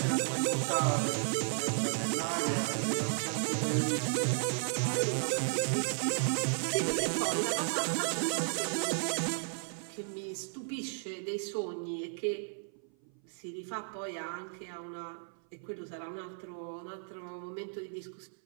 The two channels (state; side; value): silent; left; 55 dB below the other